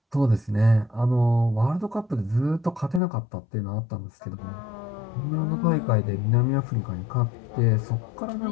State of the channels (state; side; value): drops out; right; at 3.0 s